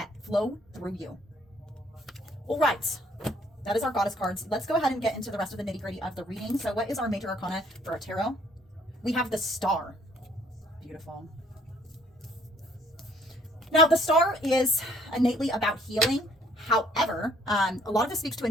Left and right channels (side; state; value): both; normal; correlation 0.62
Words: flow through you. All right, that is our goddess cards. Let's go ahead and get into the rest of the nitty-gritty of the reading. So what is our major arcana for our tarot? We have the Star. Beautiful. Now, the Star is innately about healing. However, a lot of this speaks to a